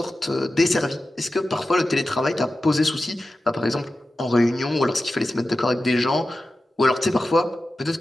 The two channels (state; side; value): normal; both; correlation 0.93